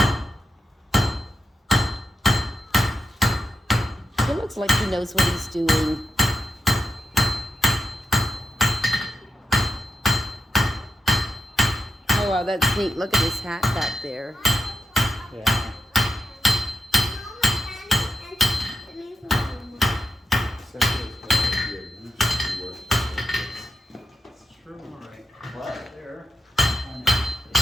It looks like he knows what he's doing. Oh, wow, that's neat. Look at his hat back there. Yeah. It's true, all right. Right there.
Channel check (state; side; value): normal; both; correlation 0.88